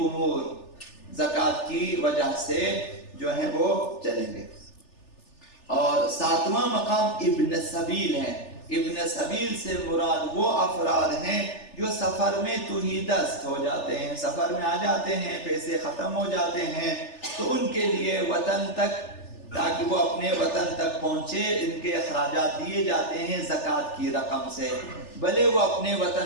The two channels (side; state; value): right; late; 3.4 ms